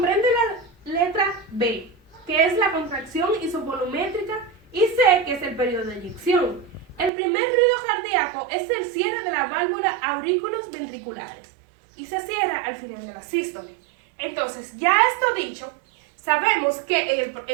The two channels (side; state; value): left; drops out; at 7.1 s